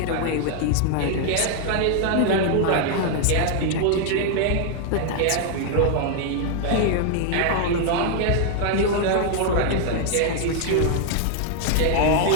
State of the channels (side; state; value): both; different; correlation 0.00